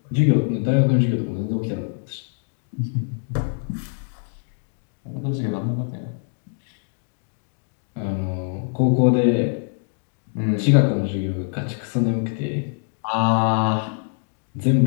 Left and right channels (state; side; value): silent; right; 59 dB below the other